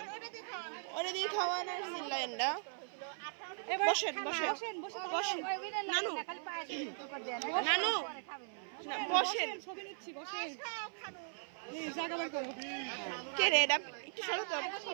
ওটা দিয়ে খাওয়ান আর সিল্লাইন না বসেন নানু নানু বসেন কে রে এটা একটু সরো তো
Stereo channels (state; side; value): silent; left; 52 dB below the other